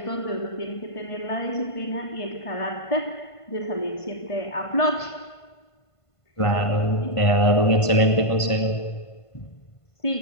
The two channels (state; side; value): late; right; 1.5 ms